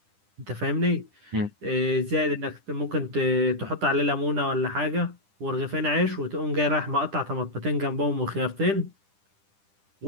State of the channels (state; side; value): late; left; 10 ms